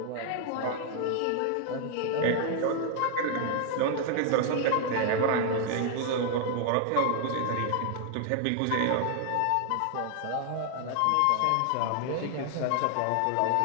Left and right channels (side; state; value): both; different; correlation 0.00